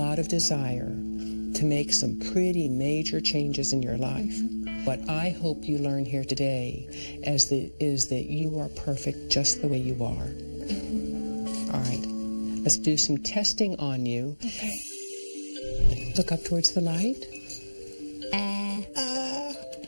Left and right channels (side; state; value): both; inverted; correlation -1.00